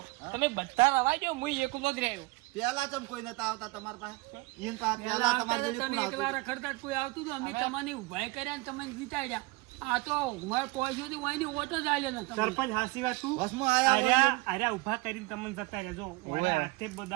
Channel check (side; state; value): left; quieter; 22.9 dB